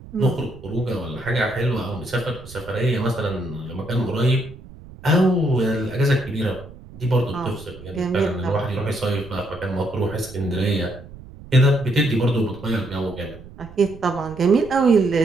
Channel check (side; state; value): right; noise; rumble, 18 dB below the sound